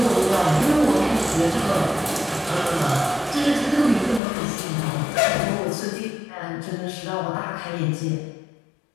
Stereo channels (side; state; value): right; drops out; at 4.2 s